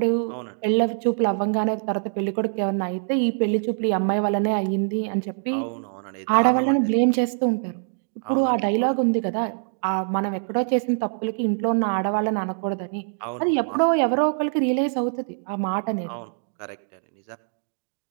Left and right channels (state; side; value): silent; left; digital silence